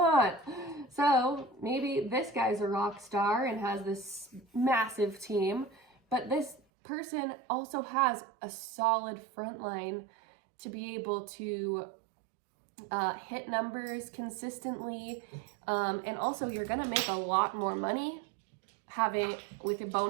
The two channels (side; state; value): left; drops out; at 6.6 s